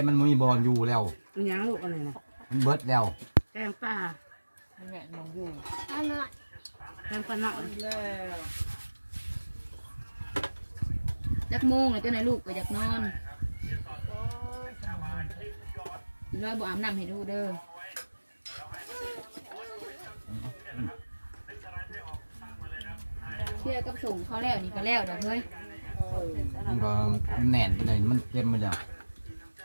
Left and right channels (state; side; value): inverted; both; correlation -1.00